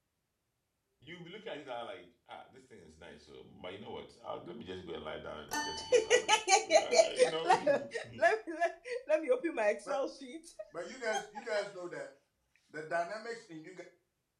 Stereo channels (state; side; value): identical; both; correlation 1.00